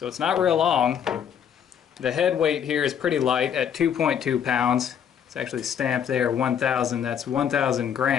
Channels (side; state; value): right; quieter; 8.4 dB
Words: it's not real long. The head weight here is pretty light at 2.2 pounds. It's actually stamped there 1,000, that's 1,000